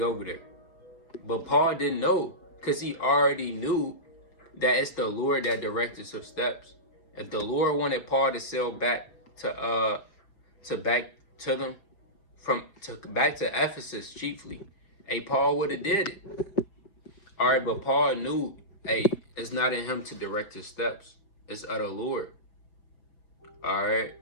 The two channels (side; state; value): right; late; 5.4 ms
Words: over there. But Paul didn't know, because he already knew that it's the Lord that directs his steps. If the Lord wanted Paul to sail back to Ephesus chiefly, Paul would have did it. All right, but Paul knew, it's not in him to direct his steps. It's of the Lord. All right.